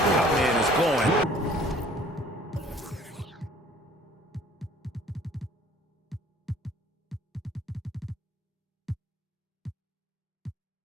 man is going.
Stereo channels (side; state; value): both; normal; correlation 0.53